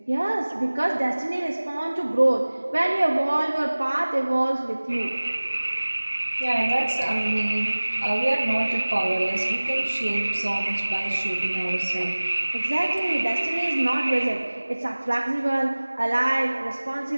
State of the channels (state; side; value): inverted; both; correlation -1.00